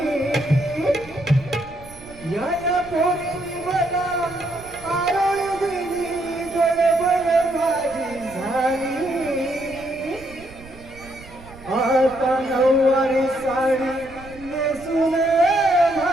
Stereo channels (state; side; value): noise; right; rumble, 19 dB below the sound